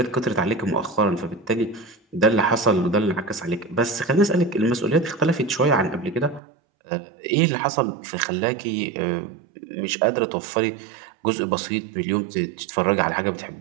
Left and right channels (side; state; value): left; drops out; at 6.4 s